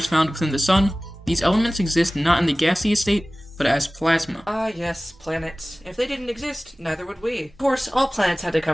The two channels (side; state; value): both; normal; correlation 0.98